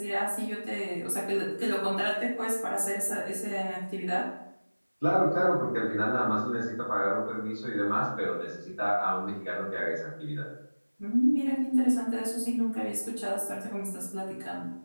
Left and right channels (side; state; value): both; inverted; correlation -1.00